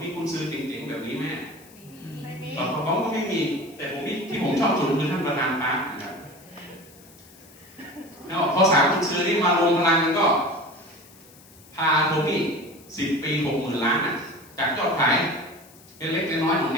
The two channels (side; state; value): left; noise; hiss, 24 dB below the sound